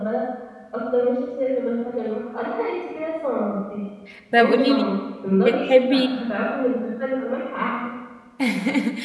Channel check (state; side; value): identical; both; correlation 1.00